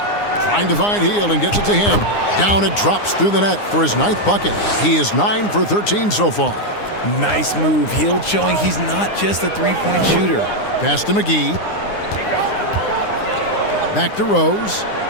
Trying to find Hield and gets it to him. Down it drops through the net for his 9th bucket. He is 9 for 13 so far. Nice move. Hield showing he's not just a three-point shooter. Pass to McGee. Back to Rose.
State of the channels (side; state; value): right; late; 9.7 ms